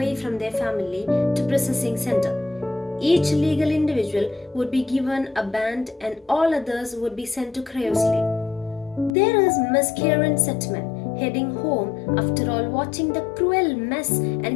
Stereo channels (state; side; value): drops out; right; at 9.1 s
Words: from their family to processing center. Each legal individual would be given a band and all others would be sent to cryosleep. There is Miss Karen Setman heading home after all watching the cruel mess